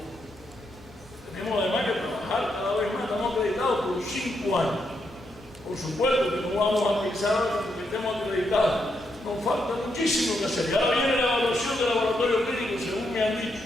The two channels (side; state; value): both; normal; correlation 0.80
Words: Tenemos además que trabajar cada vez más, estamos acreditados por 5 años. Por supuesto que no vamos a pensar porque estemos acreditados. Nos falta muchísimo que hacer. Ahora viene la evaluación del laboratorio clínico, según me han dicho.